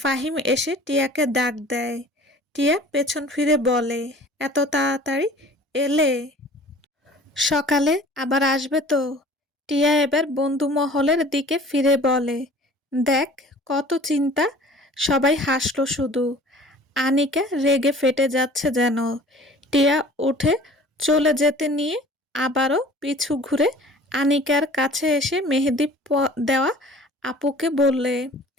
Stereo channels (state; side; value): normal; both; correlation 0.47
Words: এসে টিয়াকে ডাক দেয়। টিয়া পেছন ফিরে বলে, এত তাড়াতাড়ি এলে? সকালে আবার আসবে তো? টিয়া এবার বন্ধু মহলের দিকে ফিরে বলে, দেখ কত চিন্তা। সবাই হাসলো শুধু। আনিকা রেগে ফেটে যাচ্ছে যেন। টিয়া উঠে চলে যেতে নিয়ে আবারও পিছু ঘুরে আনিকার কাছে এসে মেহেদি দেওয়া আপুকে বললে,